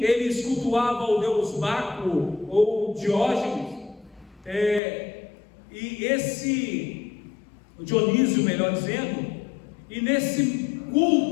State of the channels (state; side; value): drops out; right; at 4.8 s